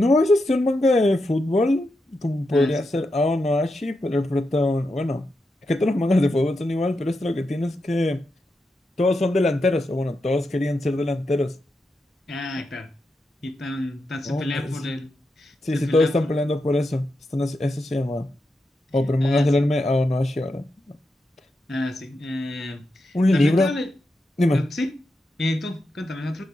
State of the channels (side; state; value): both; normal; correlation 0.86